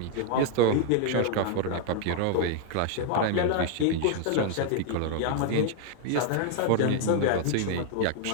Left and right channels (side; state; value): both; different; correlation 0.00